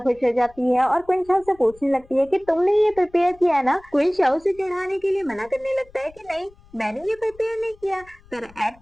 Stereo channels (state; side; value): noise; left; rumble, 26 dB below the sound